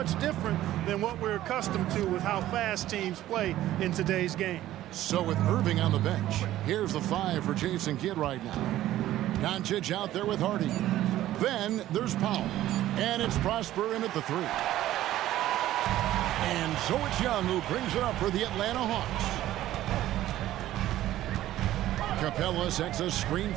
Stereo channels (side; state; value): left; quieter; 14.0 dB